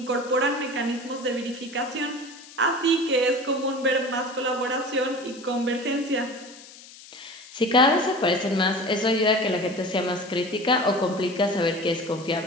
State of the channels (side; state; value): left; noise; hiss, 19 dB below the sound